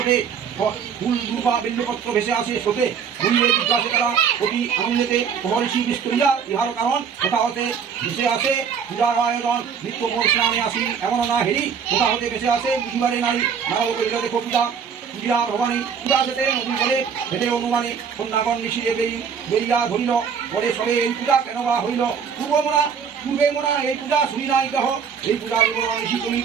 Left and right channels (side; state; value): left; quieter; 6.9 dB